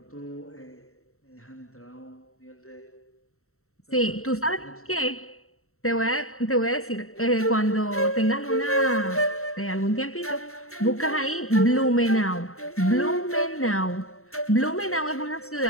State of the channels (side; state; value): right; late; 0.63 ms